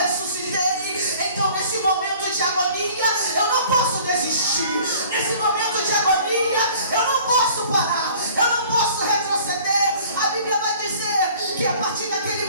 Então nesse momento de agonia eu não posso desistir, nesse momento de agonia eu não posso parar, eu não posso retroceder. A Bíblia vai dizer que a partir daquele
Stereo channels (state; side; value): inverted; both; correlation -0.51